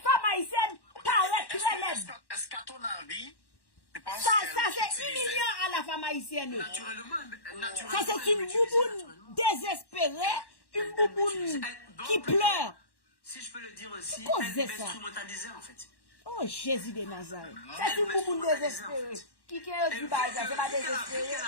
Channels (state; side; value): late; right; 1.1 ms